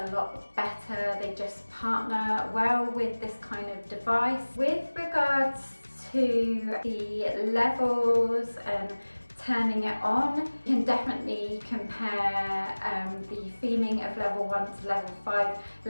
lot better. They just partner well with this kind of device. With regards to the levels and turning it on, you can definitely compare the feeling of level 1 to level 5.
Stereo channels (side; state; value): both; inverted; correlation -1.00